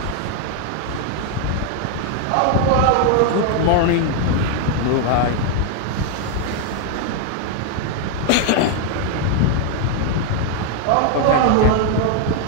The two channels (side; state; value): both; different; correlation 0.01